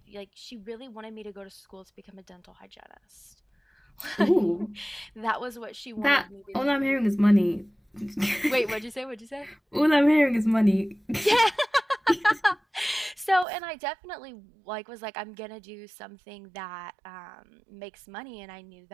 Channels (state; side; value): drops out; left; at 13.5 s